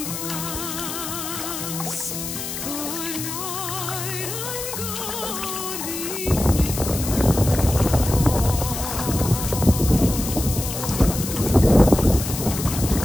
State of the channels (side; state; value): left; noise; hiss, 6 dB below the sound